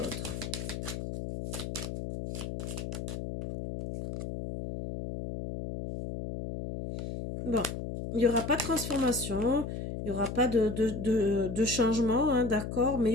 Bon, il n'y aura pas de transformation, il n'y aura pas de changement, hein, d'accord, mais il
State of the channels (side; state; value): left; noise; hum, 6 dB below the sound